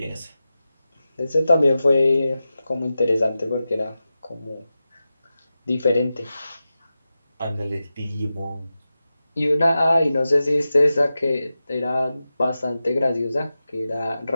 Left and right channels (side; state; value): both; inverted; correlation -0.93